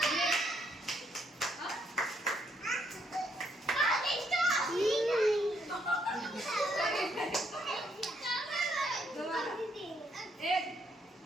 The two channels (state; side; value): normal; both; correlation 0.73